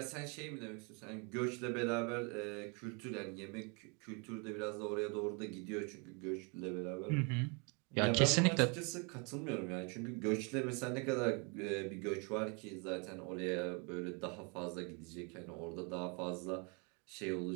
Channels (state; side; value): quieter; left; 33.7 dB